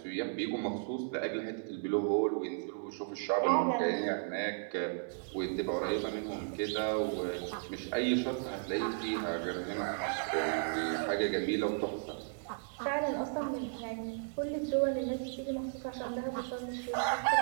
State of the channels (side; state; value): left; silent; digital silence